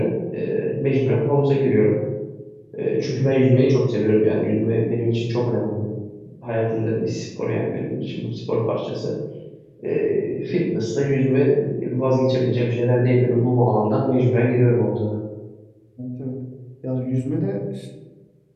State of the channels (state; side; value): identical; both; correlation 1.00